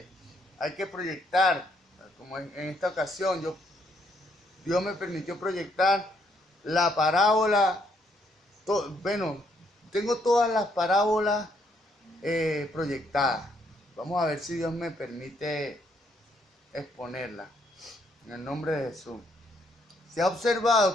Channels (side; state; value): both; normal; correlation 0.71